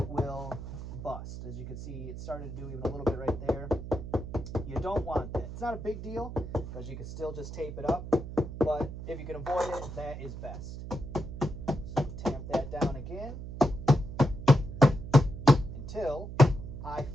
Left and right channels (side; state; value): right; noise; hum, 9 dB below the sound